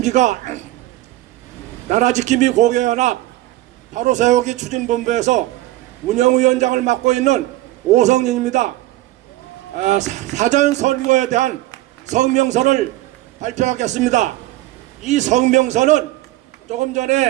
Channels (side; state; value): left; quieter; 16.9 dB